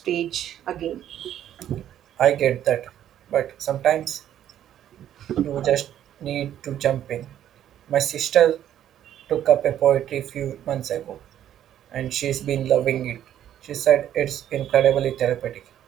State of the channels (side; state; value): left; quieter; 11.0 dB